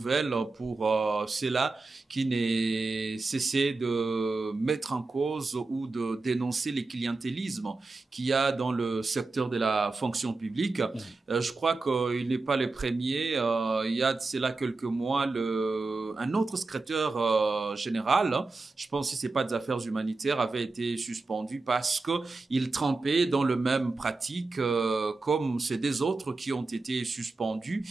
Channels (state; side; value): quieter; left; 3.6 dB